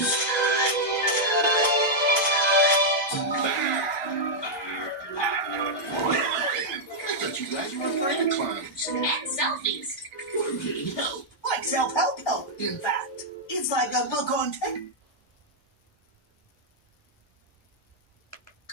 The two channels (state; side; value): normal; both; correlation -0.05